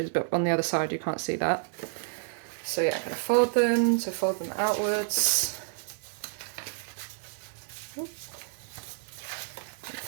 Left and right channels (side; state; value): left; silent; 58 dB below the other